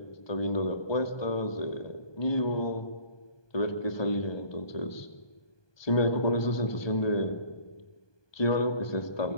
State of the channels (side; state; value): right; late; 1.2 ms